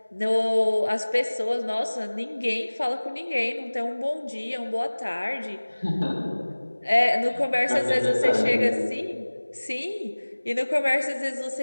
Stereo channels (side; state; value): both; inverted; correlation -1.00